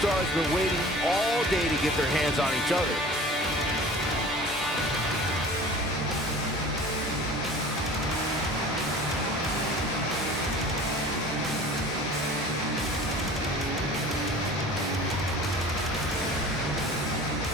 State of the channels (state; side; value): normal; both; correlation 0.42